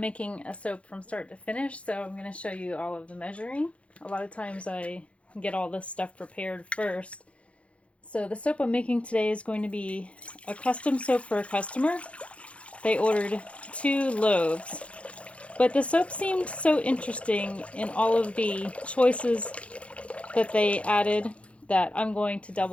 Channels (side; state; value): right; late; 0.062 ms